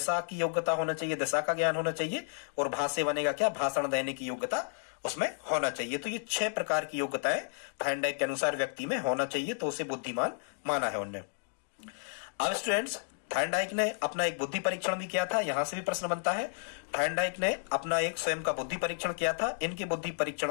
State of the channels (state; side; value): silent; right; digital silence